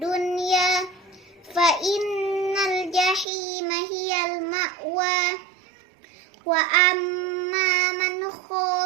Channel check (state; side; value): drops out; left; at 3.2 s